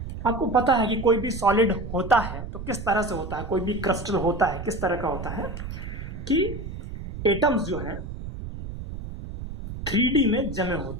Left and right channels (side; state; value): right; noise; rumble, 8 dB below the sound